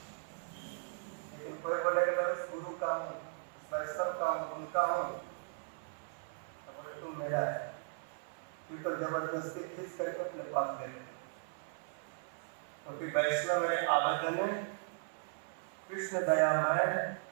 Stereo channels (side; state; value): left; silent; 53 dB below the other